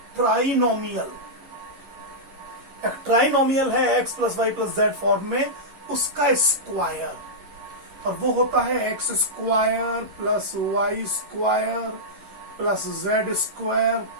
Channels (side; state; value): left; late; 11 ms